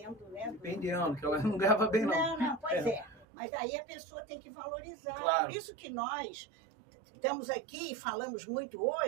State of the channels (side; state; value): left; drops out; at 3.2 s